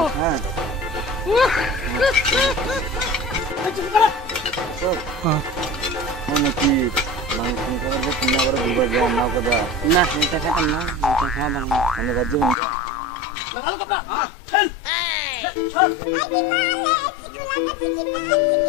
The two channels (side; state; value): right; drops out; at 12.6 s